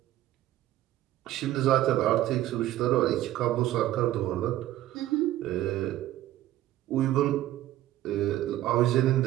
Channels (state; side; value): quieter; left; 14.2 dB